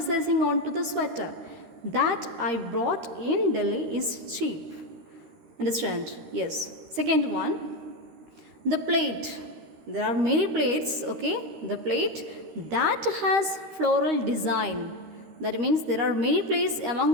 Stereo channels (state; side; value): late; left; 13 ms